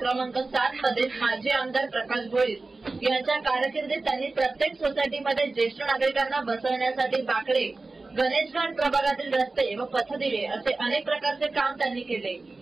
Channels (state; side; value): quieter; left; 3.5 dB